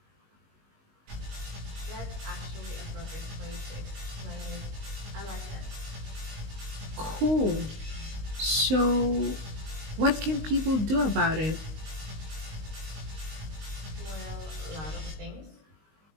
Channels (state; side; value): late; left; 19 ms